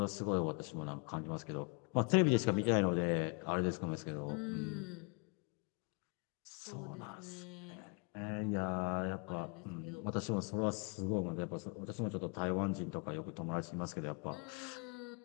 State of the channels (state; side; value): quieter; right; 32.4 dB